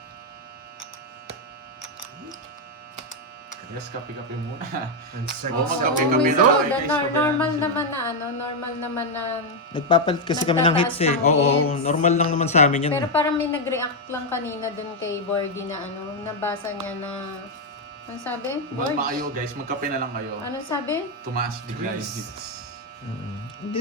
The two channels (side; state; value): both; normal; correlation 0.02